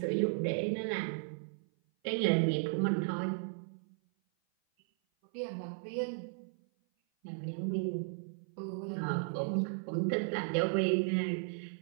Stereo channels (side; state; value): left; silent; 54 dB below the other